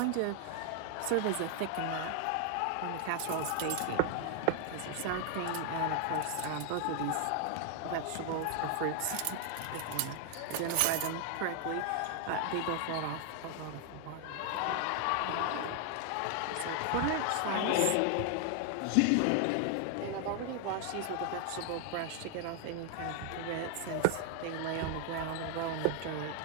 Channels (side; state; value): both; different; correlation 0.00